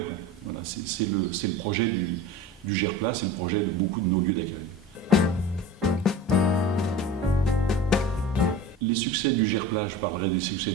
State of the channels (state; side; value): normal; both; correlation 0.35